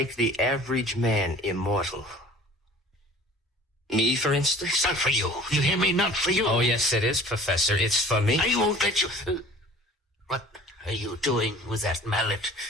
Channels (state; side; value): normal; both; correlation 0.47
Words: the average man immortal. Me, for instance? It's not for you. You hear me? Not for you. Oh, yes, it is, Professor. It's for me. I won't let you... What are you doing with that mallet?